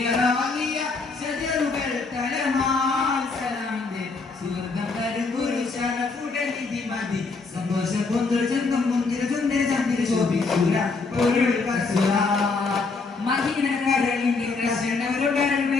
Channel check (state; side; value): quieter; right; 4.2 dB